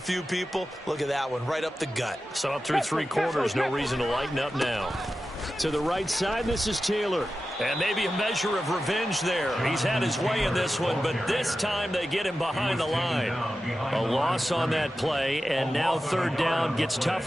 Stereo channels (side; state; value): both; normal; correlation 0.93